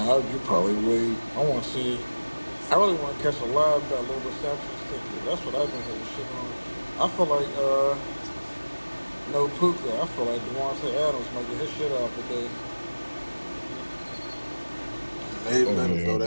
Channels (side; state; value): both; inverted; correlation -1.00